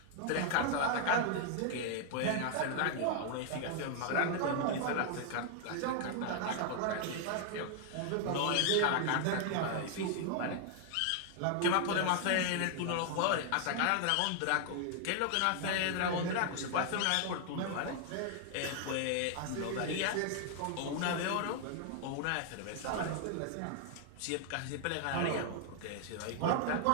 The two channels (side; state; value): both; different; correlation 0.00